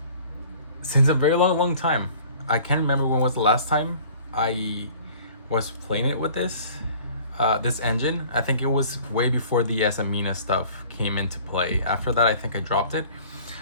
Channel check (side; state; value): both; inverted; correlation -0.49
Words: a very long time. I can't remember when was the last time I was playing it with this engine. I think it was way before the Azamina stuff came into play. After that I think I dropped it,